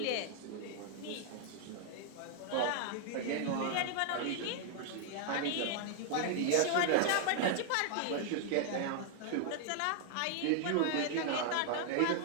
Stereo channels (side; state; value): both; different; correlation 0.00